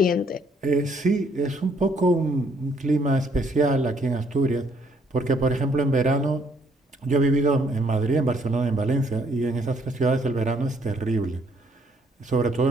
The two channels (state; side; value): normal; both; correlation 0.67